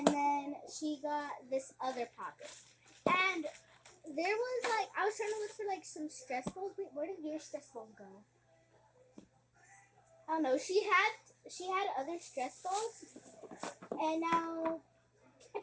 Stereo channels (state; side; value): identical; both; correlation 1.00